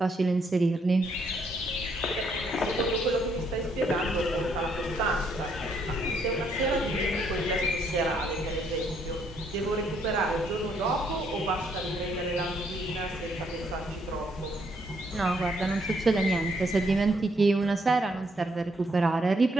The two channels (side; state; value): both; normal; correlation 0.71